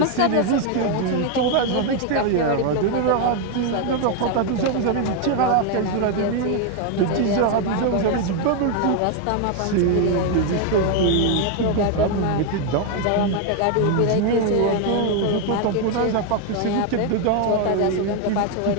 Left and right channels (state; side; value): different; both; correlation 0.01